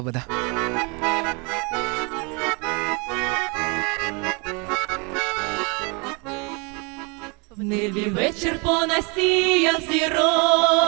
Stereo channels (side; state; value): left; quieter; 31.3 dB